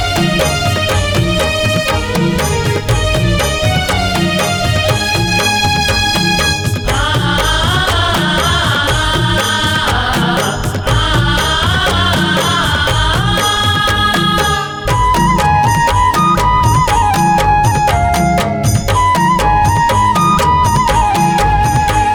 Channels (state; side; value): identical; both; correlation 1.00